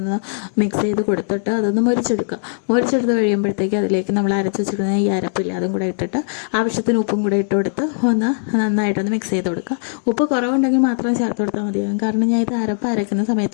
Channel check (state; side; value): silent; right; digital silence